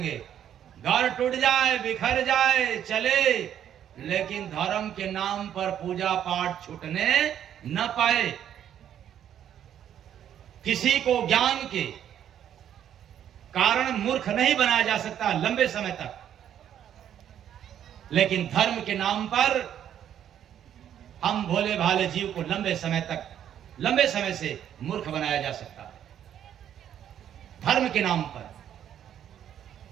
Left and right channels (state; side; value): quieter; left; 10.0 dB